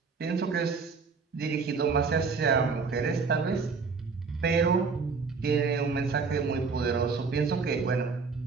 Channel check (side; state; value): left; quieter; 4.9 dB